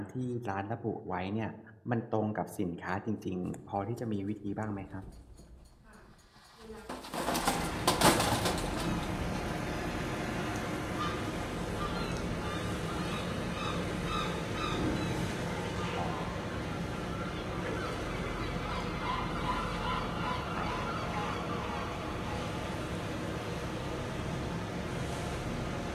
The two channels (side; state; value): both; identical; correlation 1.00